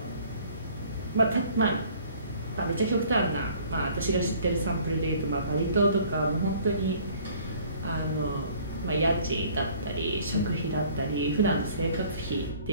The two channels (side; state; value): both; inverted; correlation -0.54